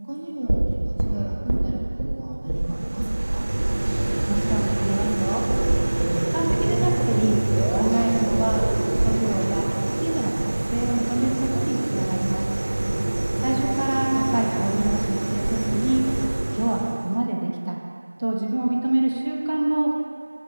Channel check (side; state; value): both; inverted; correlation -1.00